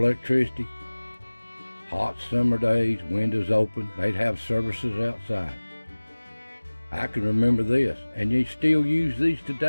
hot summer days, windows open, they'd have services outside. I can remember this, and they still use these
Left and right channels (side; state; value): both; inverted; correlation -1.00